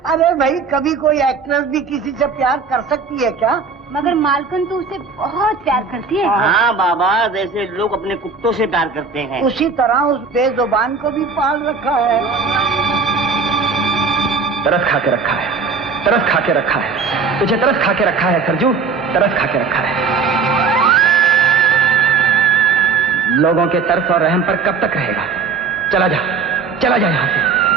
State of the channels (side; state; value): left; quieter; 5.0 dB